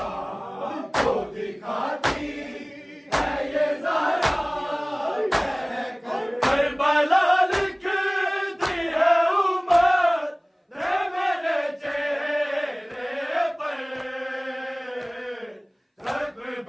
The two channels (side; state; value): both; identical; correlation 1.00